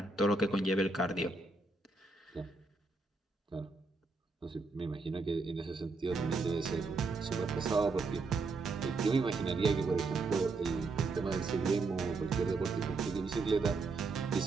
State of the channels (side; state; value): left; quieter; 3.7 dB